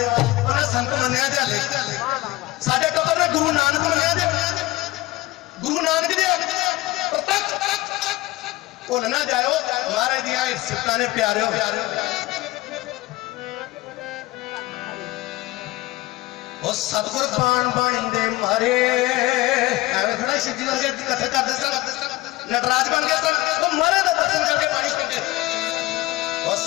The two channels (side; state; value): right; quieter; 18.8 dB